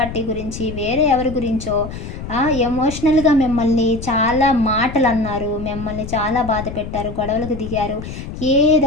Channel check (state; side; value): noise; left; rumble, 9 dB below the sound